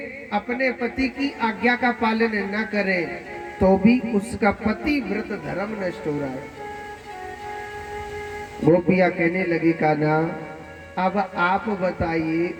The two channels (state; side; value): identical; both; correlation 1.00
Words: अपने पति की आज्ञा का पालन न करे तो भी उसका पति व्रत धर्म नष्ट हो रहा है। गोपियां कहने लगी, कान्हा अब आप बताइए